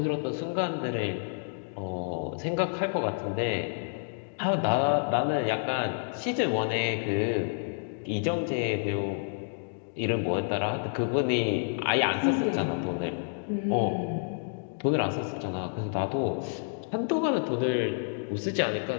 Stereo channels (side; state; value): right; silent; digital silence